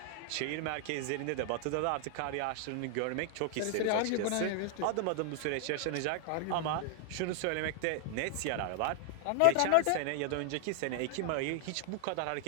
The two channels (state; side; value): different; both; correlation 0.00